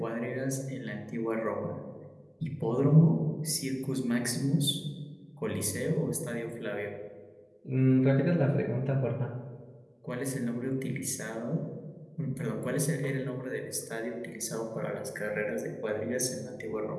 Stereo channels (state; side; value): identical; both; correlation 1.00